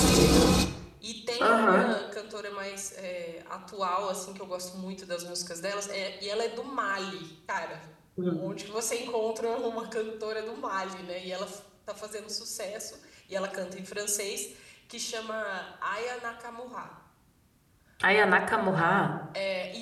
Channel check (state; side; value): identical; both; correlation 1.00